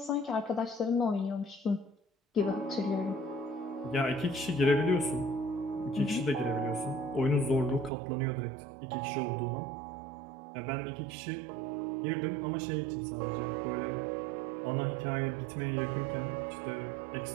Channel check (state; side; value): drops out; left; at 7.9 s